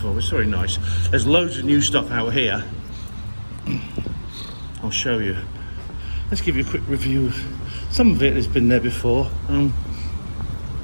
It's very nice. There's loads of new stuff out here. I'll show you. Let's give you a quick review. Some of it has been there before.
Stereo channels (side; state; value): both; inverted; correlation -1.00